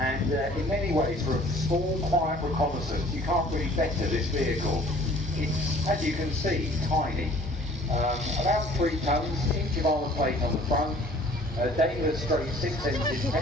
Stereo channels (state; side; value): normal; both; correlation 0.52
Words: in many ways, for a small, quiet reconnaissance, you can't really better this vehicle. It's, as you can see, tiny. About 3 tons, inch of armour plate on the front, a Daimler straight 6-engine